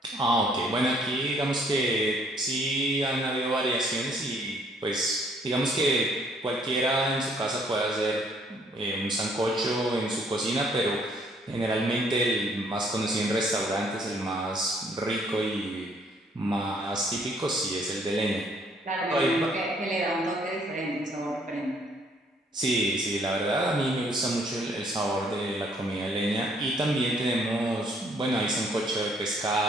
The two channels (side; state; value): both; normal; correlation 0.64